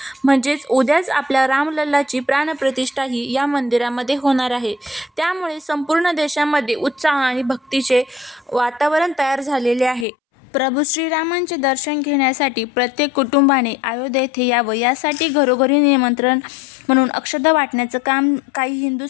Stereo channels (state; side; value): drops out; right; at 10.1 s